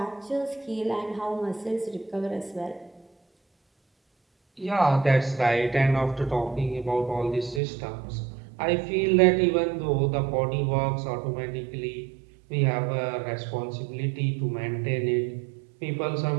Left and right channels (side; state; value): left; drops out; at 7.6 s